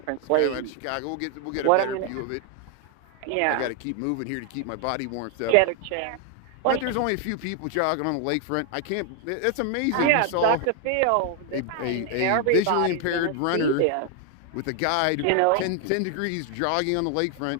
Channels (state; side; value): different; both; correlation 0.00